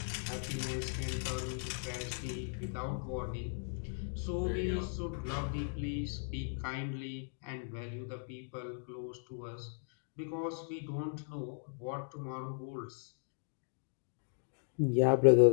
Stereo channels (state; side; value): silent; right; digital silence